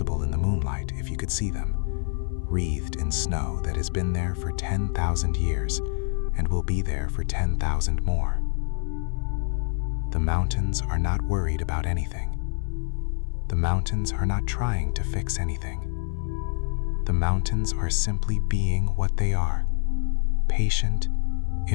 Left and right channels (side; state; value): right; silent; digital silence